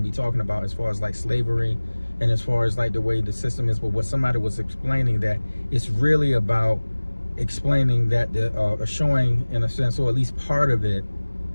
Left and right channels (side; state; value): both; inverted; correlation -1.00